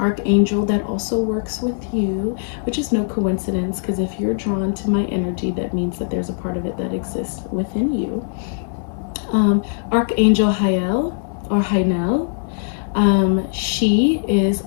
that also works with you, which is no coincidence, because if you're drawn to my energy, that means that there's a part of it that exists within you. Archangel Hael or Hainel. She is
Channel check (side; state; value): right; silent; 57 dB below the other